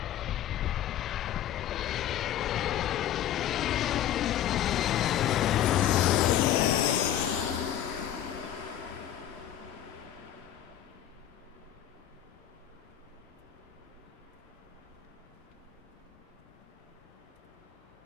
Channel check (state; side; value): quieter; right; 11.3 dB